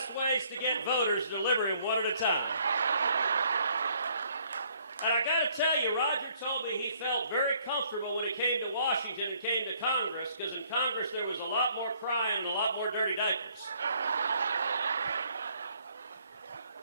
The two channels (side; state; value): both; inverted; correlation -0.64